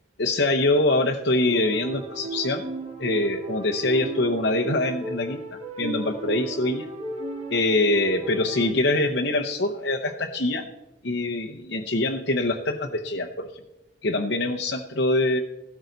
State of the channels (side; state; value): both; normal; correlation 0.15